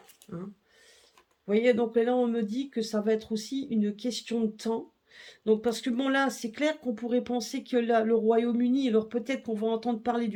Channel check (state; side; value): identical; both; correlation 1.00